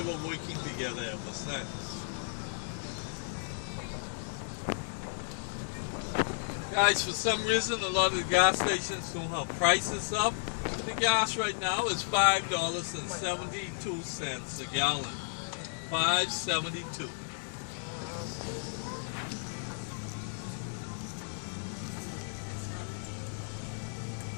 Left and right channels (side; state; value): right; silent; digital silence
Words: were working together ever since. Guys, for some reason, a lot of the gas stations don't have prices up. The gas right now is $5.72 a gallon. $5.72.